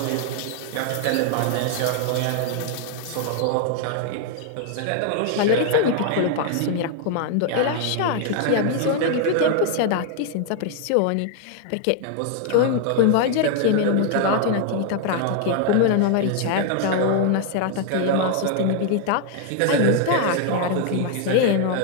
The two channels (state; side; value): different; both; correlation 0.00